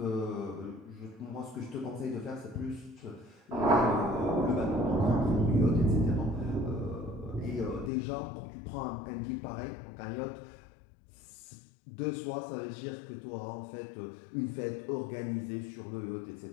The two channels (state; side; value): drops out; right; at 7.9 s